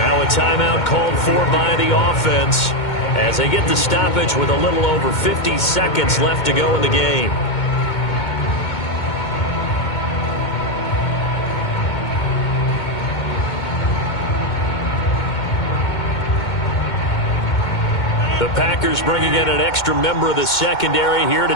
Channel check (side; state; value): right; late; 2.2 ms